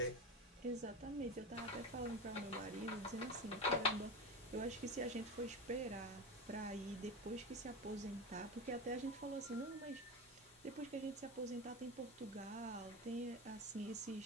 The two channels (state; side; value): normal; both; correlation 0.22